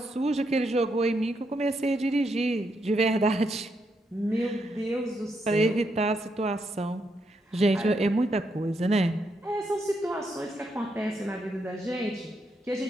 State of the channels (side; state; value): both; normal; correlation 0.80